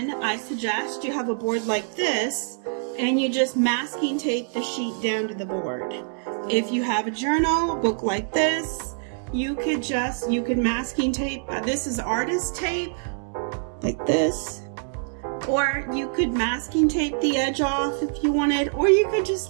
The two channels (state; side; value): silent; left; digital silence